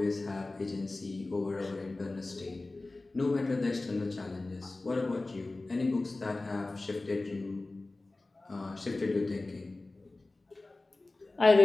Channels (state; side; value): quieter; right; 3.1 dB